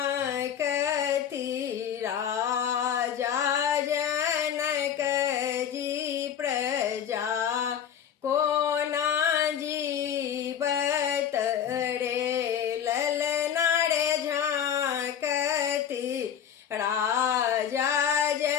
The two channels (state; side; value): quieter; right; 8.9 dB